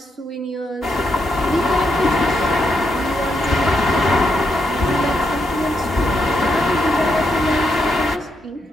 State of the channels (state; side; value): normal; both; correlation 0.81